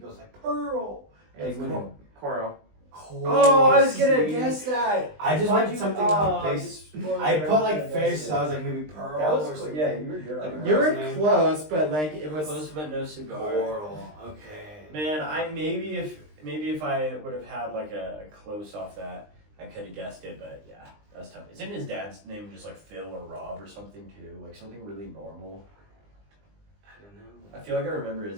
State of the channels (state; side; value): late; left; 20 ms